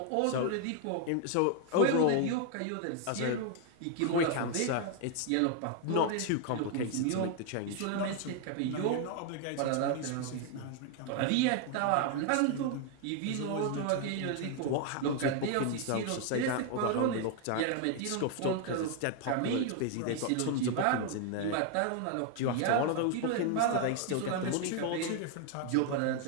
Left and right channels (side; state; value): both; different; correlation 0.00